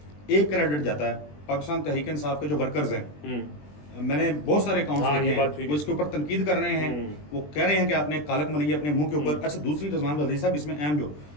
ایک کریڈٹ جاتا ہے پاکستان تحریک انصاف کے جو ورکرز ہیں، میں نے بہت سارے اکاؤنٹس دیکھے ہیں، وہ اس کے اوپر تنقید کر رہے ہیں، وہ کہہ رہے ہیں کہ آپ نے کالک ملی ہے اپنے منہ کے اوپر۔ اچھا دوسری رضوان غزالی صاحب اس میں اہم جو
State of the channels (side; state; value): right; late; 20 ms